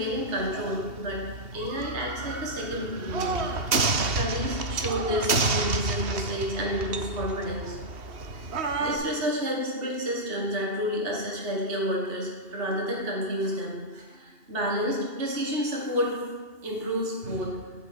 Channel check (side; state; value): left; late; 2.8 ms